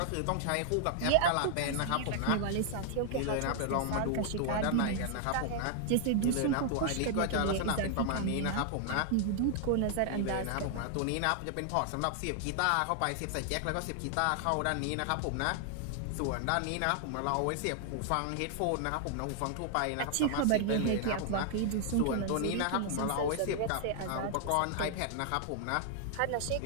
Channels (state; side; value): different; both; correlation 0.00